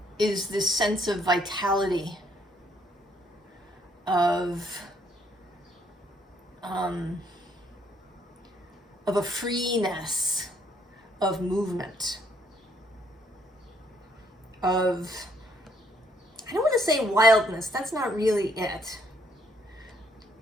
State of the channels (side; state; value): both; normal; correlation 0.68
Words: is this sense of vitality, of a freeness of movement, of, I don't want to say wildness, that's not really it.